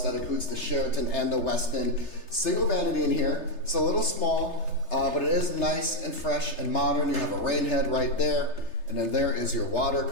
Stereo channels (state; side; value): late; right; 3.3 ms